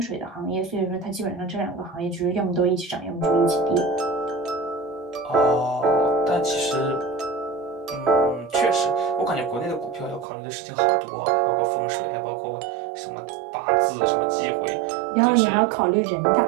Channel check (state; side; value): drops out; left; at 10.2 s